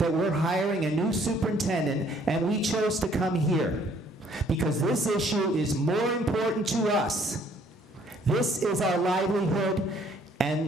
we're hiring a new superintendent, and we chose to come here because this issue is more important to us. This is our livelihood,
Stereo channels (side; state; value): both; normal; correlation 0.62